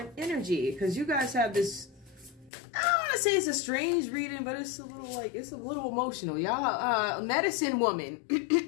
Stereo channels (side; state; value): right; drops out; at 2.5 s